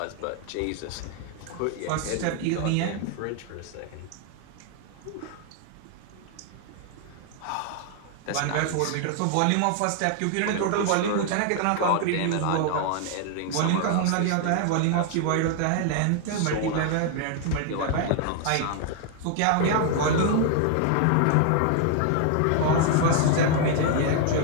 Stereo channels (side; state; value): both; different; correlation 0.00